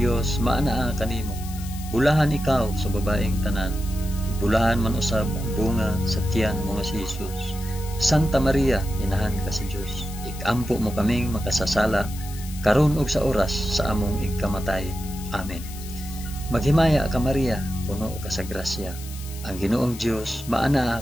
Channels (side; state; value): left; noise; hiss, 15 dB below the sound